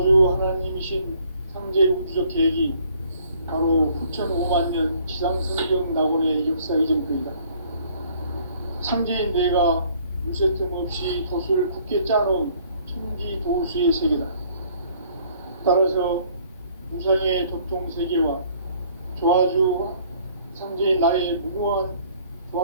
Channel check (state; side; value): inverted; both; correlation -0.60